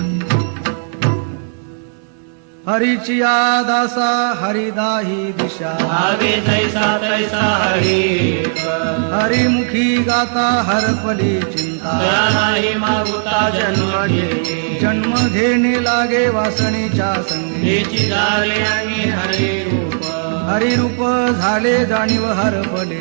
हरीचिया दासा हरिदाही दिशा भावे जैसा तैसा हरी हरिमुखी गाता हरपली चिंता दया नाही मागुता जन्म घेणे जन्म घेणे लागे वासनेच्या संगी हेची झाले आणि हरी रूप हरिरूप झाले जाणीव हरपले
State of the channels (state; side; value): silent; left; 68 dB below the other